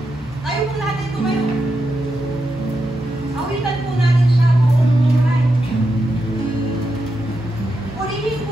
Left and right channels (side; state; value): both; normal; correlation 0.86